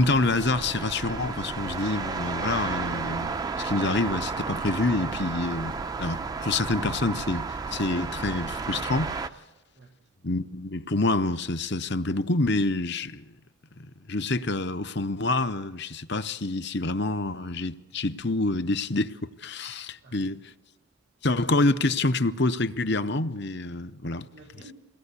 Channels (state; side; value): normal; both; correlation 0.43